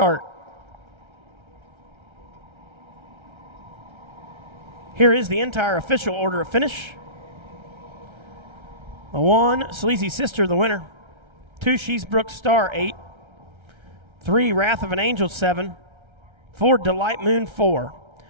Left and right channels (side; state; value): left; late; 1.3 ms